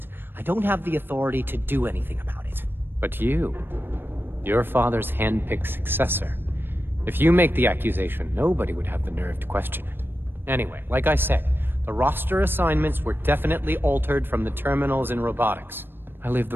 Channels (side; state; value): left; late; 0.099 ms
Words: I don't have the authority to do anything about it. But you, your father's hand-picked successor. If you make the accusation, nobody would have the nerve to question it. Anyway, like I said, the roster assignments were definitely altered from the terminals in robotics. I leave